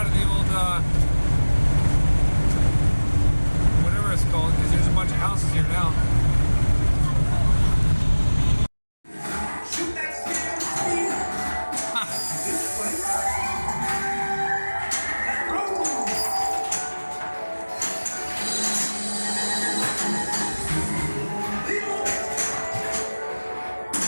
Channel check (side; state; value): both; inverted; correlation -1.00